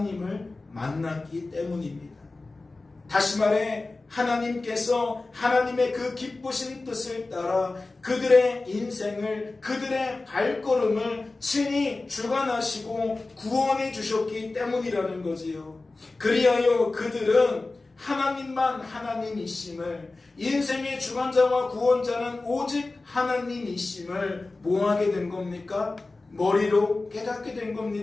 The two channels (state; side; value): quieter; right; 3.3 dB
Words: 만났기 때문입니다. 다시 말해 하나님께서 하나님의 그 기쁘신 뜻을 따라 그들의 인생을, 그들의 발걸음을 친히 주관하시고 구원해 주셨기 때문이라는 거지요. 그리하여 그들은 하나님만 하나님이심을, 인생의 주관자와 구원자는 오직 하나님이심을 뭐하게 된 겁니까? 머리로 깨닫게 된